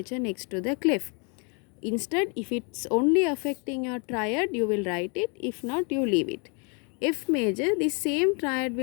next to the clef. Instead, if it's only affecting your triad, you will write it. If not, you leave it. F major, the same triad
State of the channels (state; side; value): quieter; right; 35.5 dB